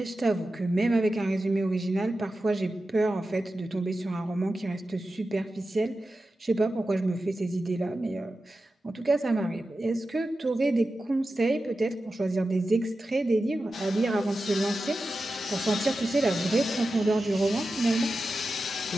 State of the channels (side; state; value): both; normal; correlation 0.92